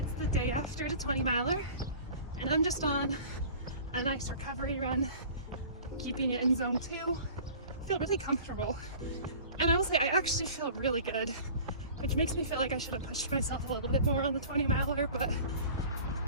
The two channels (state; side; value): inverted; both; correlation -0.42